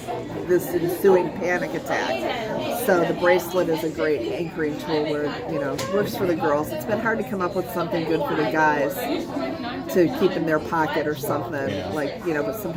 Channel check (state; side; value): identical; both; correlation 1.00